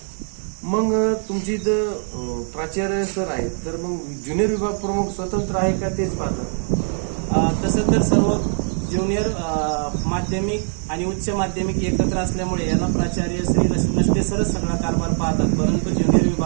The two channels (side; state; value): left; silent; 56 dB below the other